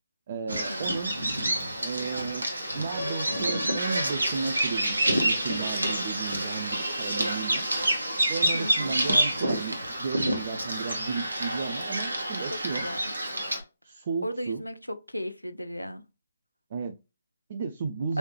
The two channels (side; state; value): both; inverted; correlation -0.85